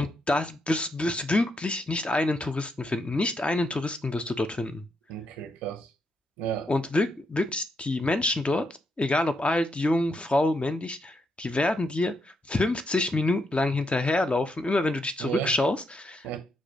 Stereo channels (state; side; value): normal; both; correlation 0.79